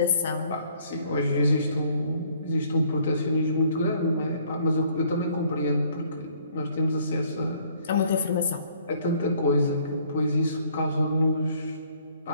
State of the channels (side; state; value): both; inverted; correlation -0.62